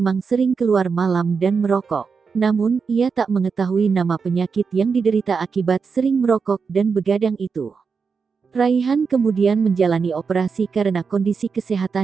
sering keluar malam dan merokok. Namun, ia tak mengetahui nama penyakit yang diderita akibat sering merokok dan begadang itu. Raihan kemudian menjalani operasi karena kondisi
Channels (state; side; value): quieter; left; 5.4 dB